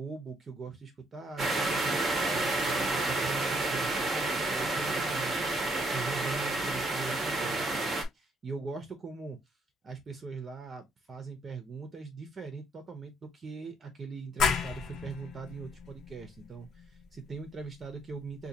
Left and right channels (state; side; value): normal; both; correlation 0.70